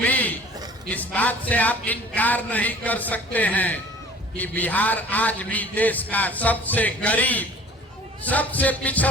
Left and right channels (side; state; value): both; normal; correlation 0.49